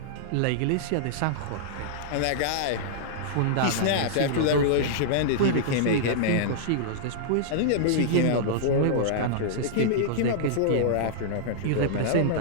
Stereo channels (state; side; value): different; both; correlation -0.02